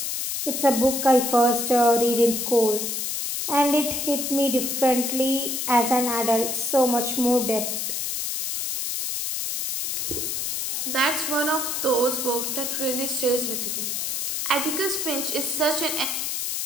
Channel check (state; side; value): noise; left; hiss, 2 dB below the sound